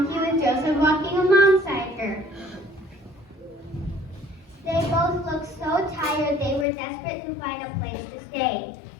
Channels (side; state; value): right; drops out; at 6.7 s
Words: with Joseph walking alongside her. They both looked so tired they were desperate to find a place to stay.